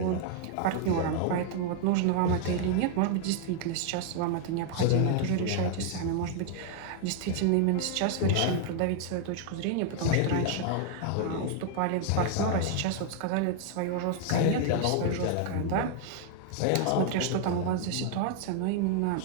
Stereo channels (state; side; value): different; both; correlation 0.00